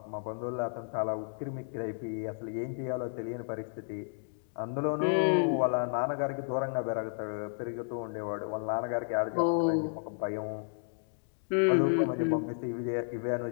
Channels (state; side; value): silent; right; digital silence